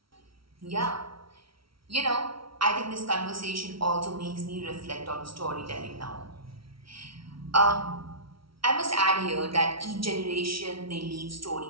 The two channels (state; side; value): late; left; 0.75 ms